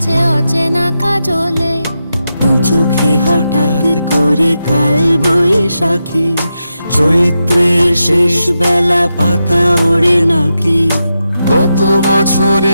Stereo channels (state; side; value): inverted; both; correlation -0.88